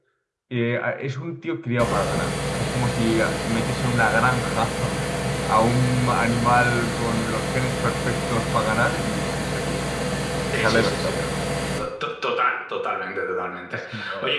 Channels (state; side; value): identical; both; correlation 1.00